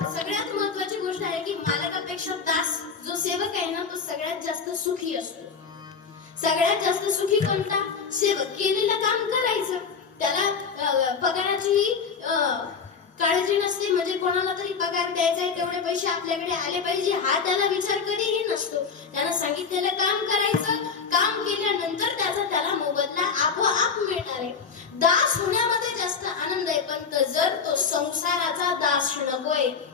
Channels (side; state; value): right; quieter; 5.7 dB